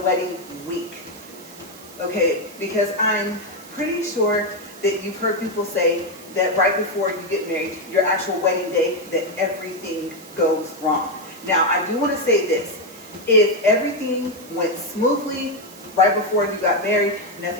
week, okay? Because I'm pretty sure that you've heard people say that right before you get married, your actual wedding day, that everything goes wrong. Now, I do want to say this. If everything went smoothly right before you got married,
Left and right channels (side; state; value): right; noise; hiss, 20 dB below the sound